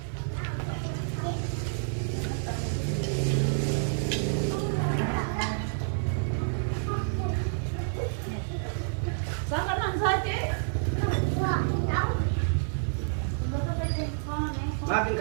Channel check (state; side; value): silent; left; digital silence